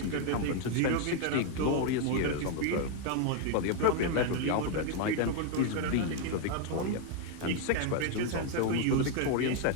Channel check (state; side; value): different; both; correlation 0.01